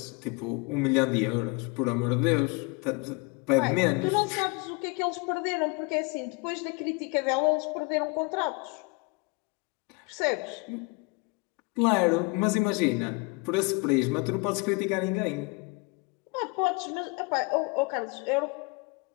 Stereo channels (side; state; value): right; quieter; 28.6 dB